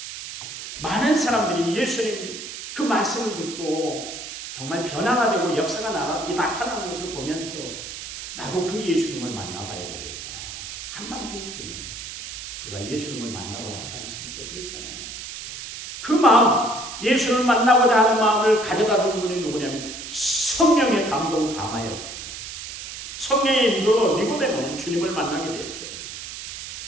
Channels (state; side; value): noise; right; hiss, 9 dB below the sound